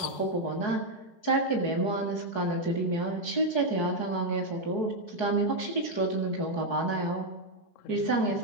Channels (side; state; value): right; late; 4.7 ms